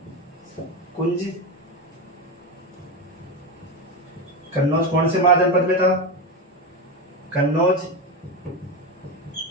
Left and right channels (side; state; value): both; normal; correlation 0.16